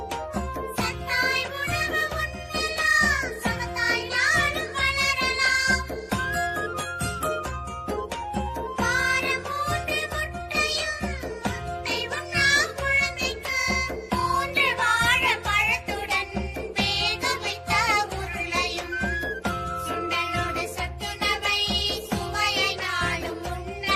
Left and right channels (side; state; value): both; identical; correlation 1.00